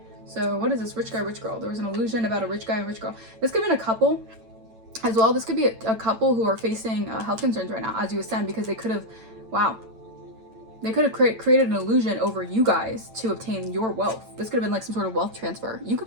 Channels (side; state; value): left; late; 9.0 ms